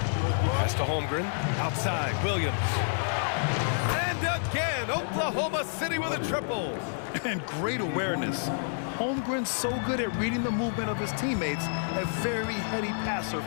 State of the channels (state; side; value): silent; right; digital silence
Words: Pass to Holmgren. Outside, Williams. And again, Oklahoma City with a triple. And great awareness. Holmgren's so good at reading the movement of his teammates, a very heady passer